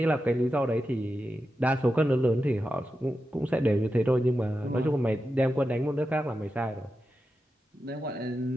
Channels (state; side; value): normal; both; correlation 0.90